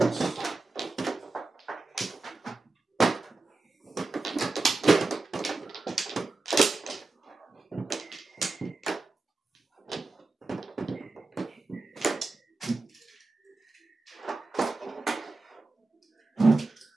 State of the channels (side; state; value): left; quieter; 3.4 dB